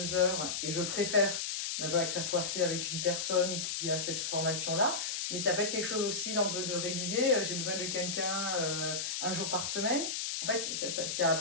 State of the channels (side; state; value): left; noise; hiss, 2 dB below the sound